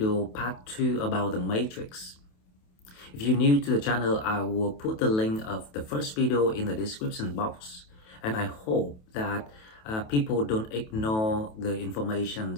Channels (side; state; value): right; late; 28 ms